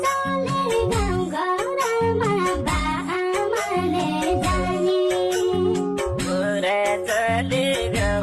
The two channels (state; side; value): identical; both; correlation 1.00